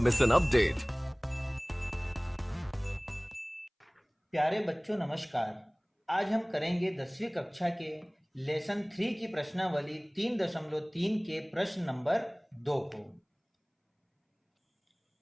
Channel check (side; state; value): both; identical; correlation 1.00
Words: an update. प्यारे बच्चों नमस्कार। आज हम करेंगे 10वीं कक्षा के लेसन 3 की प्रश्नावली 3.3 के प्रश्न नंबर 2 को।